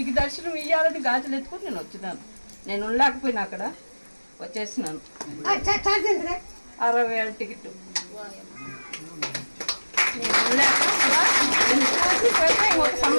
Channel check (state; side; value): inverted; both; correlation -1.00